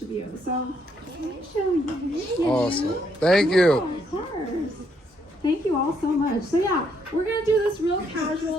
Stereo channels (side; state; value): both; normal; correlation 0.73